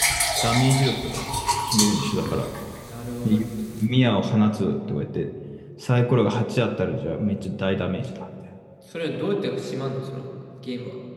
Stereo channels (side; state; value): both; identical; correlation 1.00